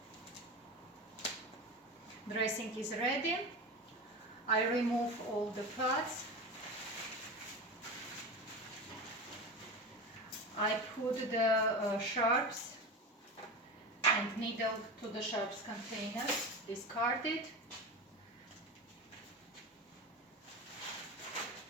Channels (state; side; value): normal; both; correlation 0.25